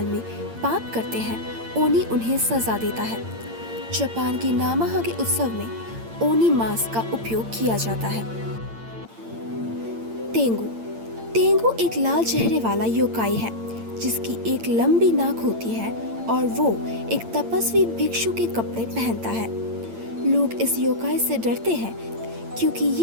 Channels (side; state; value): left; late; 8.8 ms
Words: में पाप करते हैं ओनी उन्हें सजा देता है। जापान की नामाहागे उत्सव में ओनी मांस का उपयोग किया जाता है। तेंगु। तेंगु एक लाल चेहरे वाला योकाई है जिसकी एक लंबी नाक होती है और वो एक तपस्वी भिक्षु के कपड़े पहनता है। लोग इस योकाई से डरते हैं क्योंकि